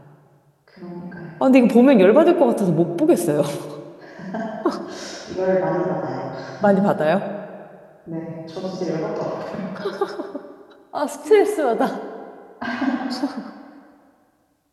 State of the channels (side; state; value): both; identical; correlation 1.00